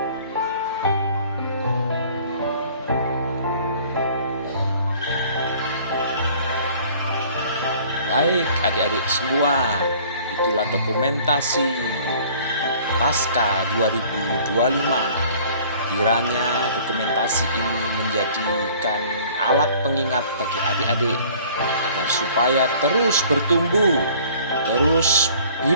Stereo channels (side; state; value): both; inverted; correlation -0.52